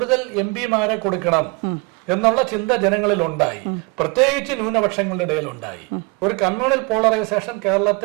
MP-മാരെ കൊടുക്കണം എന്നുള്ള ചിന്ത ജനങ്ങളിൽ ഉണ്ടായി, പ്രത്യേകിച്ച് ന്യൂനപക്ഷങ്ങളുടെ ഇടയിൽ ഉണ്ടായി. ഒരു കമ്മ്യൂണൽ പോളറൈസേഷൻ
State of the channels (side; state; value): left; quieter; 29.3 dB